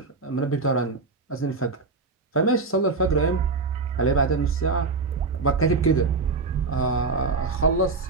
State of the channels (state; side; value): quieter; left; 4.0 dB